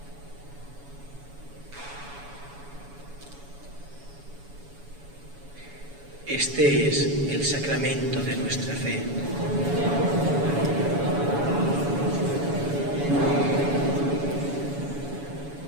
Este es el sacramento de nuestra fe.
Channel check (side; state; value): left; late; 7.1 ms